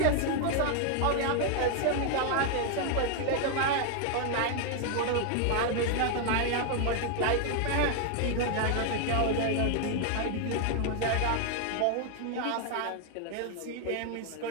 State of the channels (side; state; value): both; different; correlation 0.00